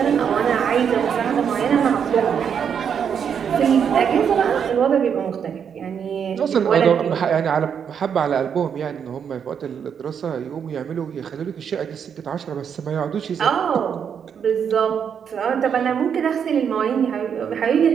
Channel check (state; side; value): quieter; left; 7.6 dB